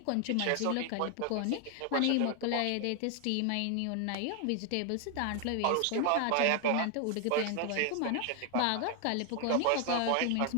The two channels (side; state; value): both; different; correlation 0.01